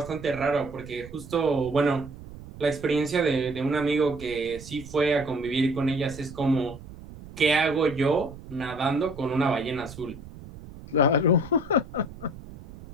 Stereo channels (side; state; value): right; noise; rumble, 16 dB below the sound